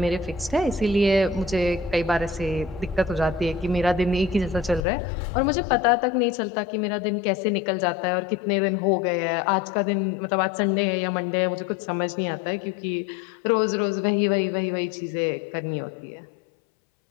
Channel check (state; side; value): drops out; right; at 4.9 s